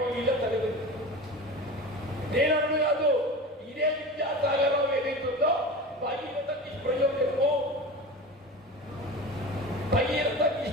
వీళ్ళ తల్లిదండ్రులు నేను అన్ను కాదు. ఇదే విద్యాసాగరం ఏదైతుందో భగీరథ నిష్ప్రయోజనము భగీరథ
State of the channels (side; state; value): both; normal; correlation 0.31